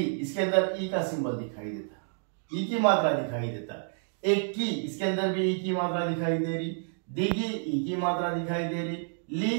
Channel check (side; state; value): left; silent; digital silence